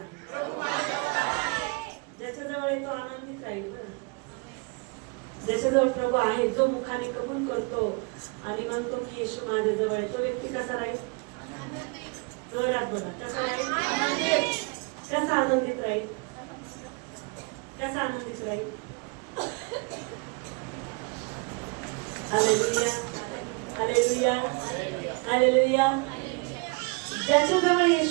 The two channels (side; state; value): left; quieter; 31.6 dB